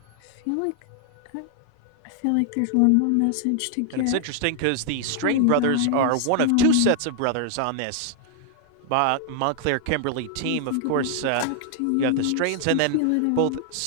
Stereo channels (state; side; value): different; both; correlation 0.00